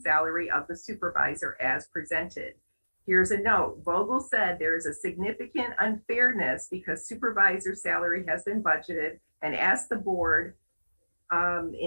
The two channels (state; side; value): inverted; both; correlation -1.00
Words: of the supervisor as presented. Here's a note. Vogel said there is a significant unfairness because supervisor salary has been budgeted and asked the board